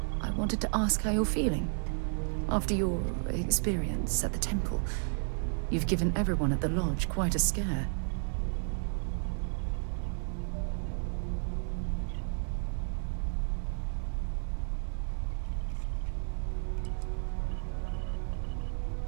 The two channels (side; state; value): left; silent; digital silence